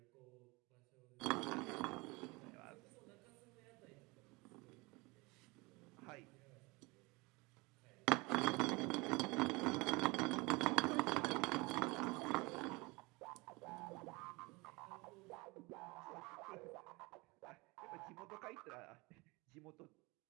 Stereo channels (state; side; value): quieter; left; 25.2 dB